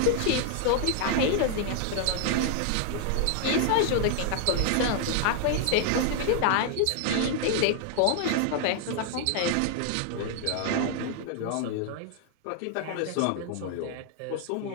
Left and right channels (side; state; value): both; different; correlation 0.00